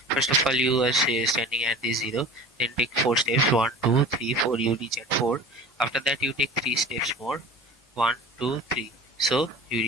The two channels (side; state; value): both; normal; correlation 0.39